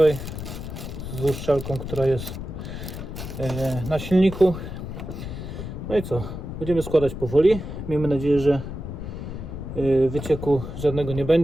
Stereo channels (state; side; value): noise; left; rumble, 8 dB below the sound